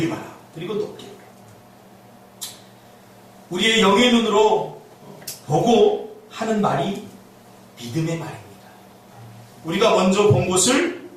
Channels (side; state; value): both; identical; correlation 1.00